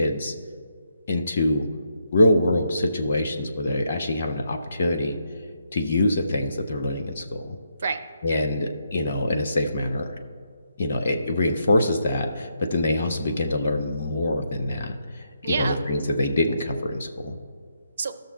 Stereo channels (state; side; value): inverted; both; correlation -0.78